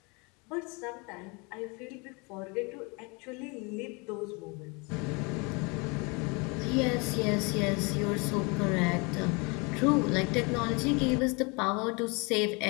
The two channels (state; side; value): quieter; right; 29.7 dB